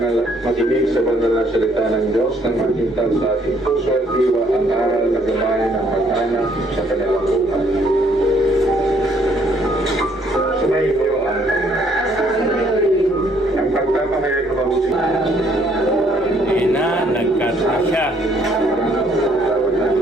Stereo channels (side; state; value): both; normal; correlation 0.66